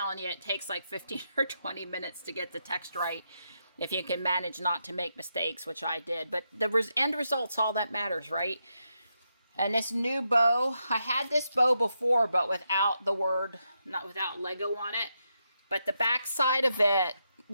you, it takes like 15 or 20 minutes to get the text right, if you can manage not to make mistakes, which I did. But the end result's all that matters, right? And this new bow, I had this bow before, but without without Lego on it. But the back side of it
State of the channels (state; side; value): inverted; both; correlation -0.83